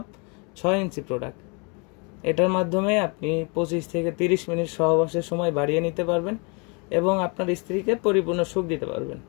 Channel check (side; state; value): right; quieter; 32.6 dB